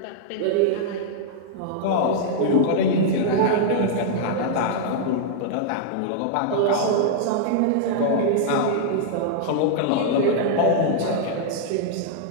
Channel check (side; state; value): both; different; correlation -0.02